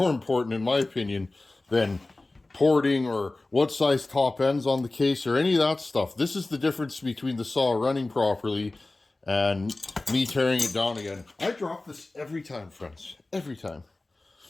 important in my opinion, than porting or what size top ends on the case or any of that stuff. This is the difference between the saw running properly and me tearing it down again. I drop this every time, friends. Every time.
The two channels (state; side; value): quieter; right; 3.0 dB